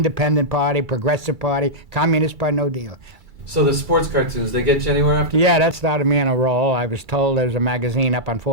Party, Progressive Party, Communist Party, no deal. So the sports cartoons, they get you anywhere after? Yeah, that started me on a roll. I was told there was a magazine up on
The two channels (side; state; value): left; late; 2.3 ms